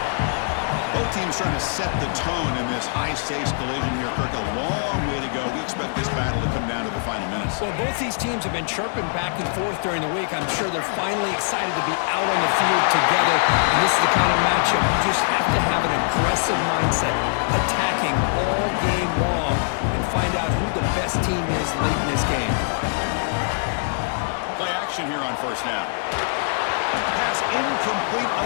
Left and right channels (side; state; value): right; silent; 64 dB below the other